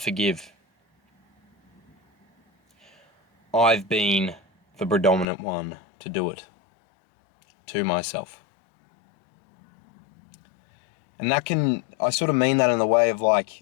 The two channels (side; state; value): right; drops out; at 5.2 s